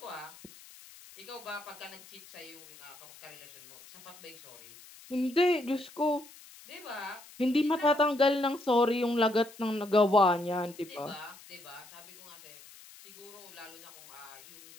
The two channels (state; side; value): noise; left; hiss, 20 dB below the sound